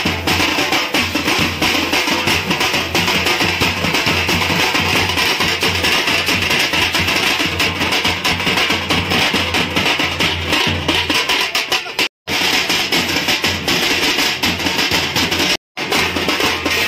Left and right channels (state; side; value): identical; both; correlation 1.00